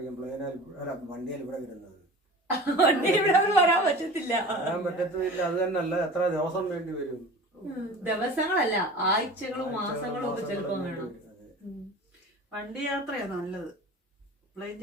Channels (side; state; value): both; normal; correlation 0.38